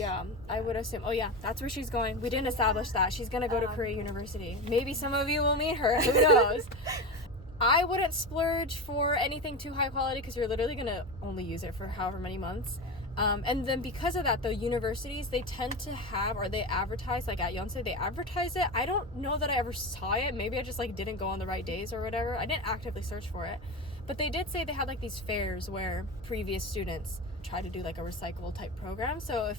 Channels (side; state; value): both; normal; correlation 0.22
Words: I would assume. Oh yeah, that's where she's going. We didn't establish that. She's gonna go to Korea University. Maybe some of you will meet her. Who knows? I wouldn't splurge for anything too high quality because you're literally gonna only use it for however many months. And then because of that, the universities, they tend to have, or they advertise, like at Yonsei, they advertise it. I don't know that I ever saw it. Maybe I just, like, didn't go on the right days or whatever. I didn't actively search for it. But they did say they had, like, these fairs where previous students try to do, like, a recyclable type program. So